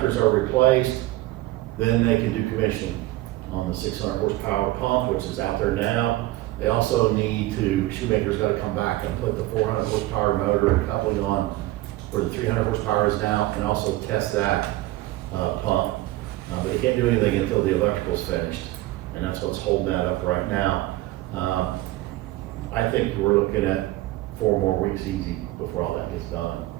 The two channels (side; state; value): left; quieter; 17.5 dB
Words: are replaced, then they can do commissioning on the 600 horsepower pump, which is out there now. They also need to, Shoemaker's gotta come back and put the 400 horsepower motor and coupling on where the 300 horsepower is now, and also test that, pump. But they can't do anything until the electrical's finished, and that's what's holding that up right now. I think we're looking at 4 more weeks easy before all that gets done.